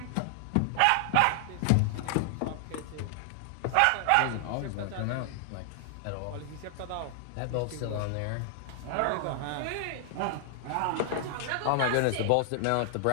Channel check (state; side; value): different; both; correlation 0.00